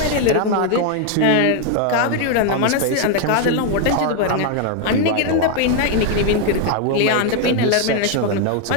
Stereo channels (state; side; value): different; both; correlation 0.01